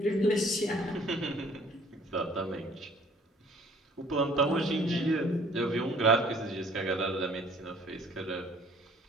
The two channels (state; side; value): normal; both; correlation 0.56